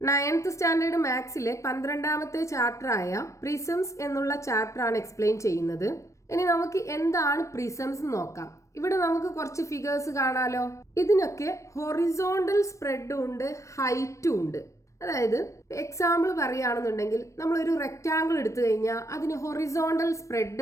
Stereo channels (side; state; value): right; late; 0.15 ms